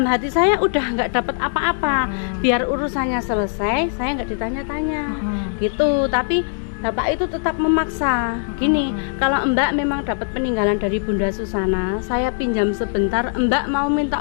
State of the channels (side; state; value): right; silent; 65 dB below the other